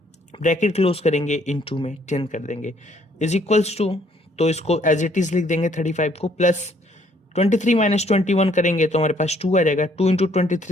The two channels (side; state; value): both; normal; correlation 0.65